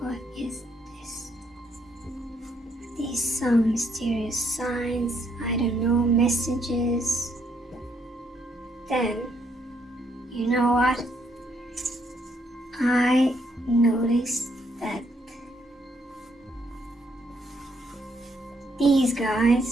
is this? These some mysterious signs, I don't know, messages. Then, you know what? I noticed that these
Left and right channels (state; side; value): normal; both; correlation 0.73